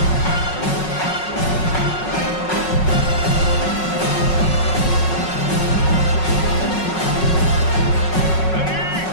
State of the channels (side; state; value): right; late; 5.4 ms